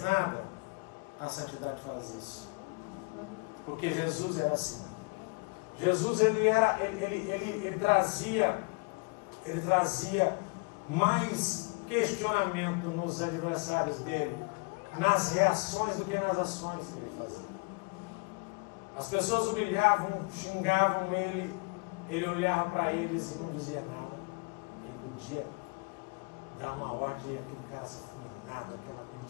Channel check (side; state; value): right; quieter; 30.9 dB